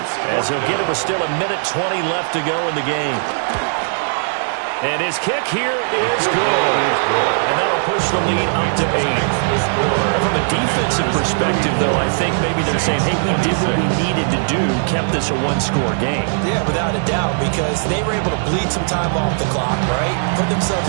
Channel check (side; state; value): left; silent; digital silence